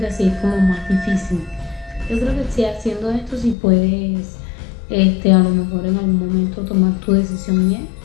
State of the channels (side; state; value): right; drops out; at 3.6 s